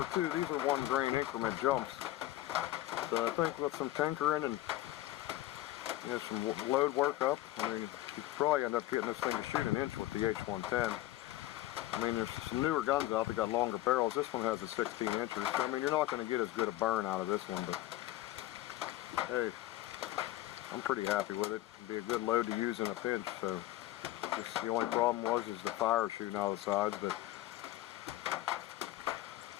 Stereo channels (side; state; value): right; quieter; 15.6 dB